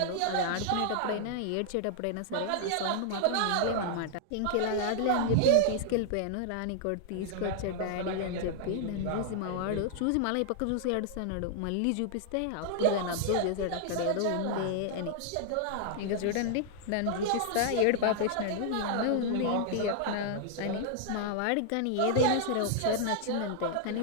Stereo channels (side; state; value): both; different; correlation -0.01